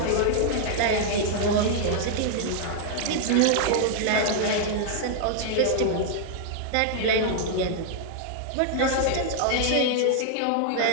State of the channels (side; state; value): both; different; correlation -0.01